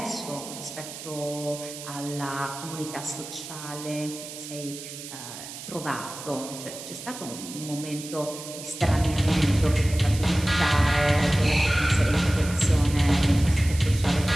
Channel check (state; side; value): noise; right; hiss, 12 dB below the sound